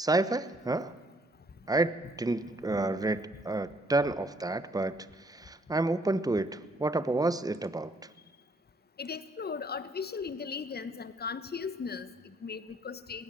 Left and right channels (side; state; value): both; normal; correlation 0.66